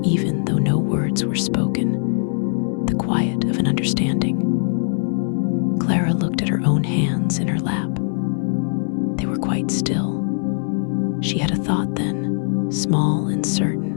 even though no words were spoken, the quiet of an understanding. Clara looked at her own hands in her lap. They were quite still. She had a thought then, small and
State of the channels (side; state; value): right; silent; 58 dB below the other